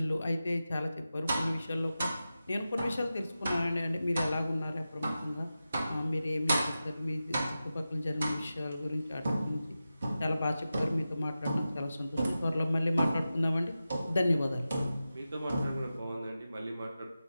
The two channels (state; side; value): inverted; both; correlation -0.93